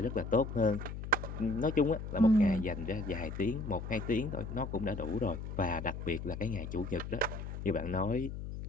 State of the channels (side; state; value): left; noise; hum, 7 dB below the sound